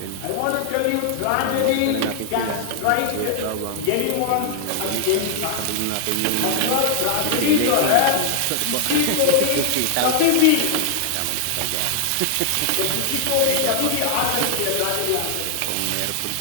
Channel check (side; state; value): both; different; correlation 0.00